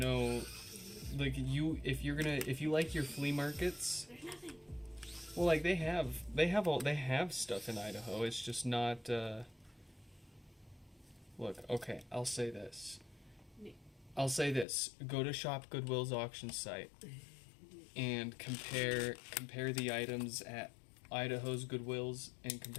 like if you like your flea markets. There's nothing. Well, like they have stuff in Idaho. It's just not. Look, okay, I'll say this. Go to Shop Goodwill's auction site and compare the items at Idaho's Goodwills and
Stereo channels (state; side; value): drops out; right; at 14.7 s